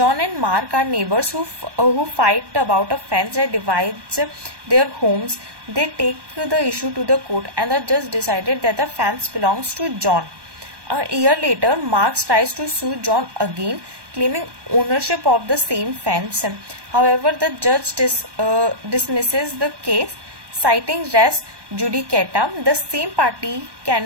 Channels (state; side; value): late; left; 1.2 ms